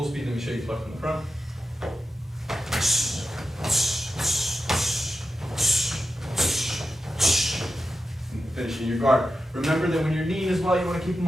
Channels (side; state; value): both; normal; correlation 0.91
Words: speed, let me show you Pluck from the front. Finishing your guard. Remember that when you're kneeing as well, you want to keep them